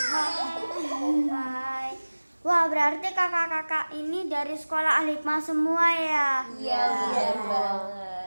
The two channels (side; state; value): both; inverted; correlation -1.00